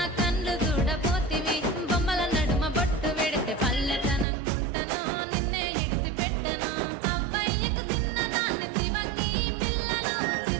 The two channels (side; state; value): left; drops out; at 4.2 s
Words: కళ్ళు చూడపోతివి బొమ్మల నడుమ బొట్టు వెడితే పల్లెతనంగుంటను నిన్నే ఇడిసి పెట్టను అవ్వయ్యకు చిన్నదాన్ని శివంగి పిల్లను